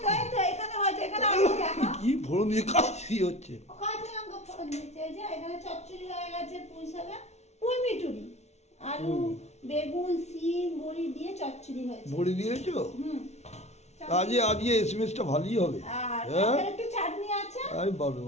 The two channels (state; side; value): late; right; 0.32 ms